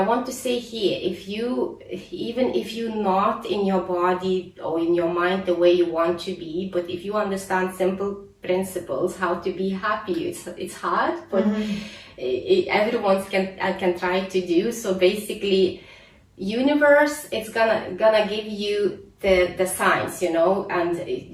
want to say here, even if you're not in your body or in your mind the way you want to be, but if you understand simple principles how to be happy, it's hard, but everyone can try to do. So basically, universe, it's gonna give you the signs, you know, and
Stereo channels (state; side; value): identical; both; correlation 1.00